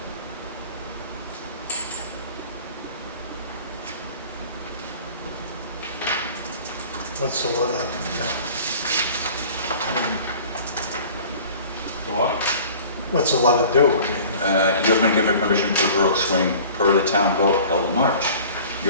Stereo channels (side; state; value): both; inverted; correlation -0.45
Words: What's the letter? The what? What's the letter do? You have been given permission for the rope swing per the town vote held in March.